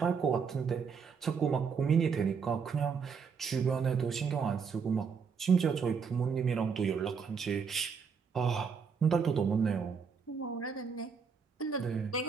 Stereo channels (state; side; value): quieter; left; 6.0 dB